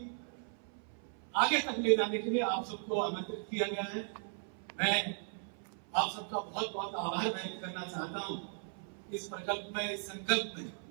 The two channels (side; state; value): left; silent; 53 dB below the other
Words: आगे तक ले जाने के लिए आप सबको आमंत्रित किया गया है। मैं आप सबका बहुत बहुत आभार व्यक्त करना चाहता हूं। इस प्रकल्प में, इस संकल्प में